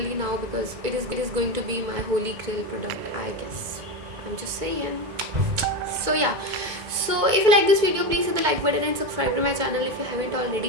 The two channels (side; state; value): left; late; 2.1 ms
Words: now, because it is going to be my holy grail product, I guess. I'm just saying. So yeah, so if you like this video, please hit the like button and subscribe to my channel if you haven't